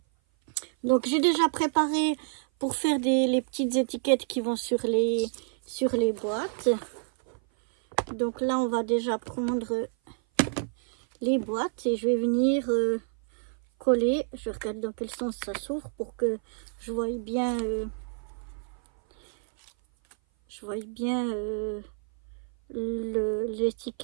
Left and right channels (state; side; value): silent; left; 56 dB below the other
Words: Donc j'ai déjà préparé pour faire les petites étiquettes qui vont sur les boîtes. Donc là on va déjà prendre les boîtes et je vais venir coller. Je regarde dans quel sens ça s'ouvre pour que je voie bien